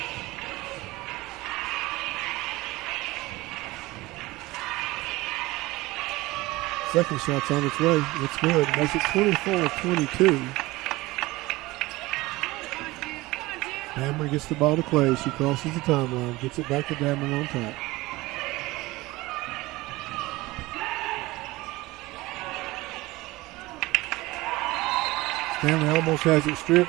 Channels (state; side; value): quieter; left; 20.1 dB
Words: Second shot's on its way. It's good. Makes it 24-22. Dameron gets the ball to Clay. She crosses the timeline. Gets it back to Dameron on top. Stanley almost has it